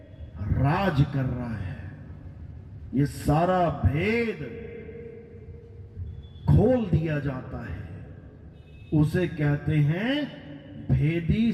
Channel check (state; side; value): identical; both; correlation 1.00